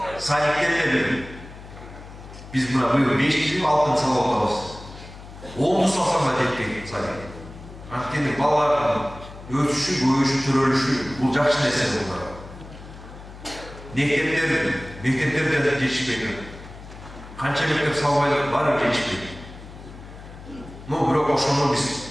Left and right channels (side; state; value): left; noise; hum, 16 dB below the sound